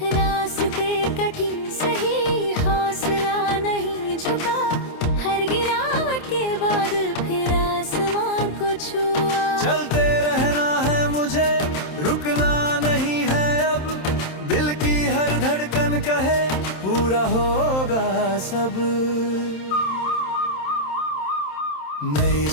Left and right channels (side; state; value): right; late; 27 ms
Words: रास्ते कठिन सही, हौसला नहीं झुका, हर गिरावट के बाद फिर आसमां को छुआ। चलते रहना है मुझे, रुकना नहीं है अब, दिल की हर धड़कन कहे पूरा होगा सब। नई